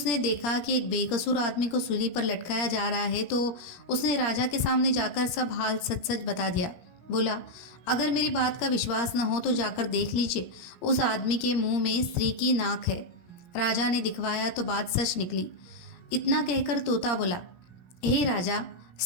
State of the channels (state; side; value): late; right; 17 ms